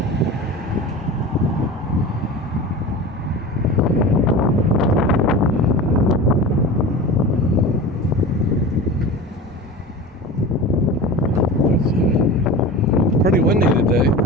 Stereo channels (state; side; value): normal; both; correlation 0.32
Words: Pretty windy today.